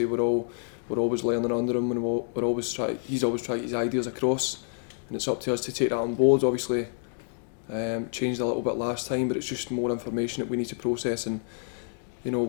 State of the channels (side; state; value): right; silent; digital silence